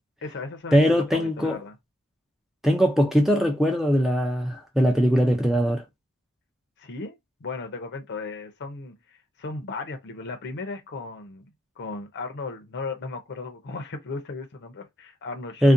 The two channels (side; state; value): both; normal; correlation 0.85